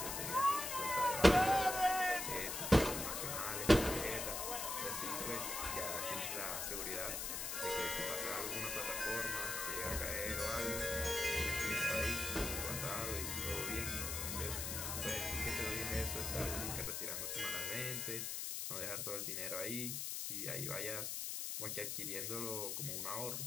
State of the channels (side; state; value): left; noise; hiss, 3 dB below the sound